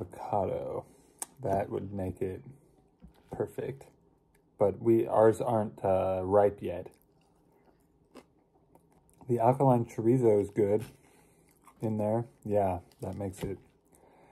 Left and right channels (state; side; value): identical; both; correlation 1.00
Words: That would make it perfect, but ours aren't ripe yet. The alkaline chorizo is good in there. Yeah, that makes it